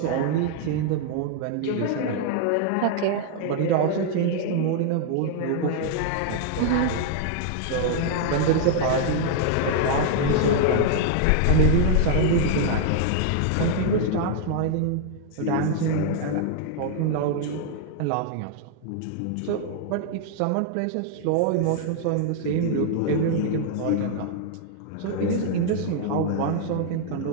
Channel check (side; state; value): both; different; correlation -0.01